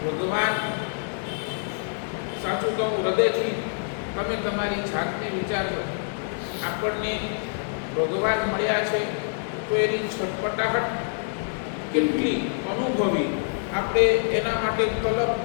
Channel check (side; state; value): right; silent; digital silence